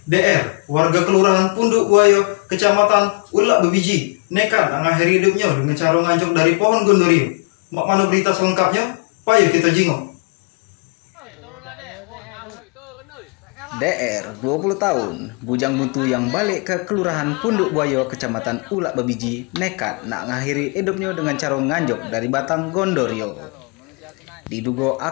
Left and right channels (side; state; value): right; quieter; 29.7 dB